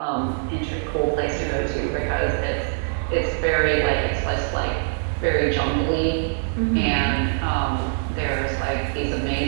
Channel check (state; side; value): silent; left; 55 dB below the other